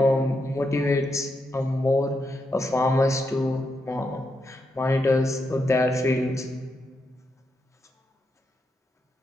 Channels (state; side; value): normal; both; correlation 0.83